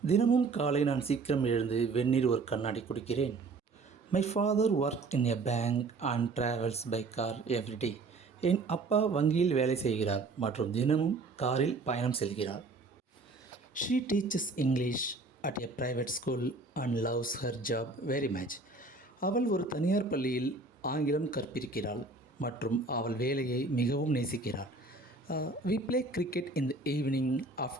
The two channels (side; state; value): left; quieter; 3.6 dB